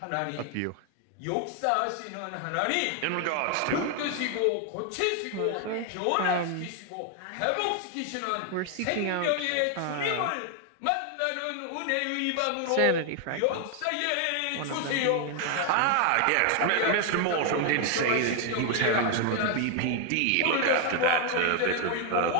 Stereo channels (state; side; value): different; both; correlation 0.00